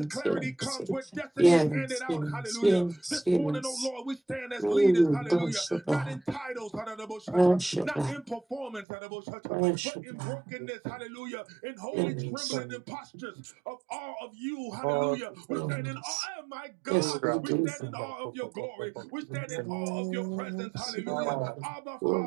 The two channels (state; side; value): drops out; left; at 8.8 s